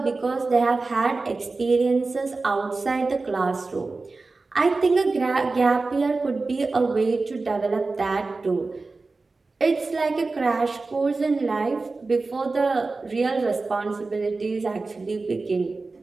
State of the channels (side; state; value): left; quieter; 3.7 dB